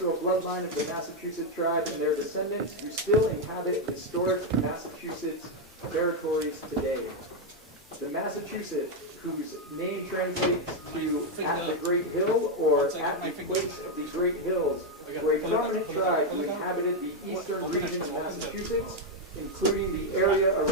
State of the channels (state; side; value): normal; both; correlation 0.02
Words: bloodline of the Massachusetts tribe and their descendants who still inhabit historic Massachusetts territories today. The Massachusetts, whose name translates to at the Great Hill or at the place of the Great Hills, were a prominent tribe who inhabited the eastern region of Massachusetts, including the area